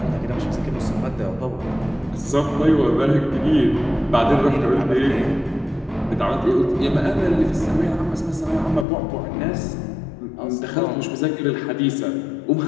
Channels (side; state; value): right; drops out; at 8.8 s